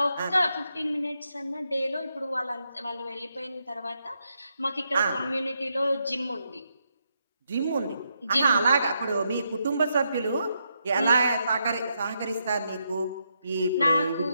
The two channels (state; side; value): inverted; both; correlation -0.80